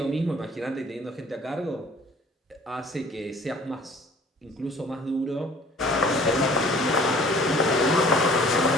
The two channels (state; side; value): normal; both; correlation 0.51